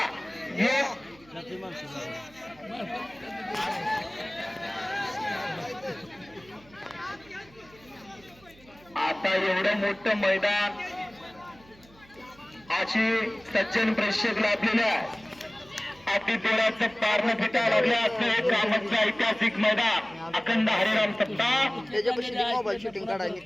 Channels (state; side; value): noise; right; hum, 26 dB below the sound